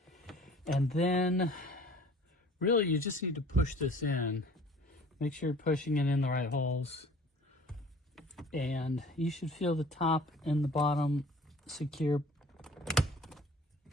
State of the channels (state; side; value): normal; both; correlation 0.49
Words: And then, really, you just need to push this in. Make sure you're pushing it in the right holes. And you should feel the top and the bottom secure